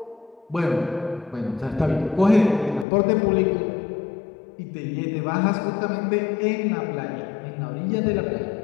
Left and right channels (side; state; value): right; drops out; at 2.9 s